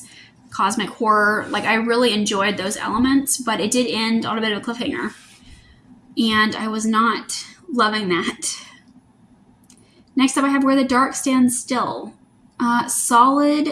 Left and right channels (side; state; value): both; identical; correlation 1.00